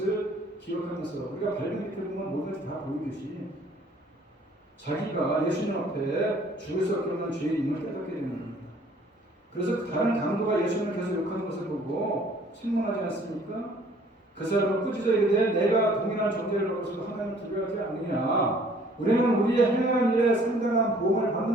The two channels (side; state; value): both; normal; correlation 0.57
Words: 기억하면서 우리가 발견 밑에 보면 모든 것이 다 보이듯이 자기가 예수님 앞에 죽을 수 없는 죄인임을 깨닫게 되는 겁니다. 그래서 다른 강도가 예수님을 계속 욕하는 것을 보고 책망하지 않습니까? 그 사람은 꾸짖어 이르되 내가 동일한 존재를 하고서도 하나님을 두려워하지 않느냐. 우리는 우리의 행한 일에 상당한 보험을